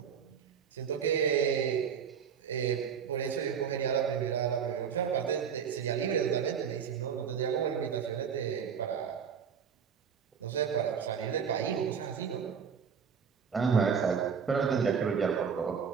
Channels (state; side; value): quieter; left; 7.1 dB